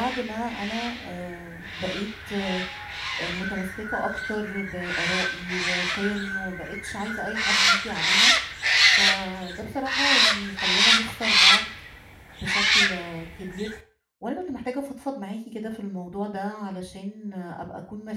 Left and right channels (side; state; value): both; identical; correlation 1.00